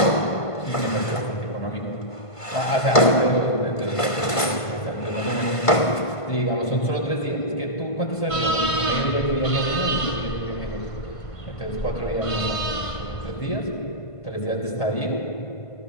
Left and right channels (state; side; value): late; right; 1.5 ms